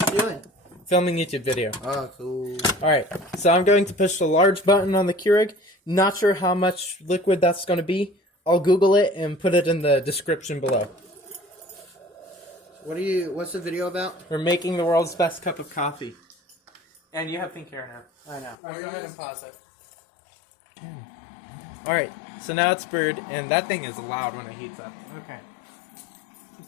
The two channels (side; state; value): right; drops out; at 18.6 s